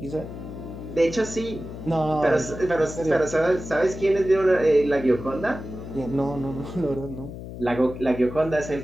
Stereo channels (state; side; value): noise; left; hum, 11 dB below the sound